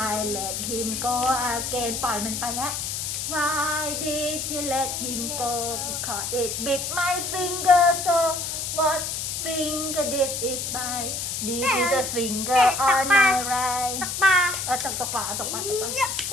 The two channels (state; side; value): noise; left; hiss, 3 dB below the sound